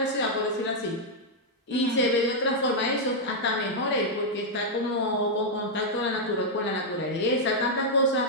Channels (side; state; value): both; normal; correlation -0.04